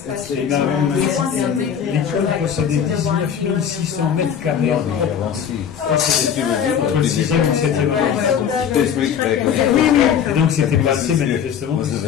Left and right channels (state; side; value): quieter; right; 8.2 dB